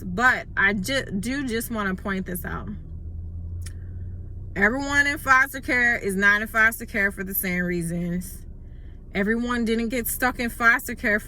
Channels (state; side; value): identical; both; correlation 1.00